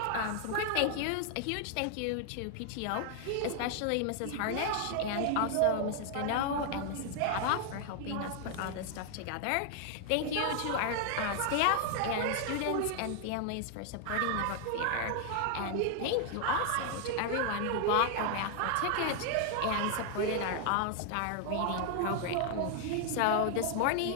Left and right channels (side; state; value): both; different; correlation 0.00